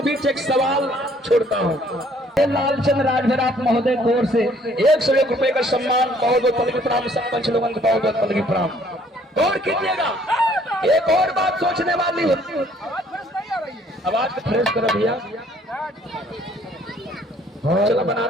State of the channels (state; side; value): normal; both; correlation 0.61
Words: बीच एक सवाल छोड़ता हूँ। लालचंद राजभर आप महोदय की ओर से 101 रुपए का सम्मान, बहुत बहुत पलगी प्रणाम। सरपंच लोगों को बहुत बहुत पलगी प्रणाम। गौर कीजिएगा, एक और बात सोचने वाली है। आवाज को फ्रेश करो भैया। चला बना